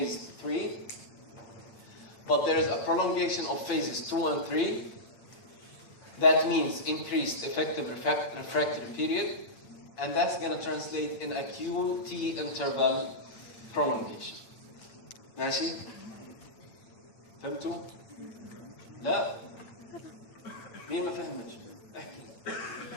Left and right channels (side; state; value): right; late; 8.8 ms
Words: 3. But there is a prolongation of phases 2 and 3. That means increased effective refractory period, and that's going to translate in a QT interval prolongation. ماشي؟ فهمتوا؟ لا؟ مين ما فهمش؟ احكي.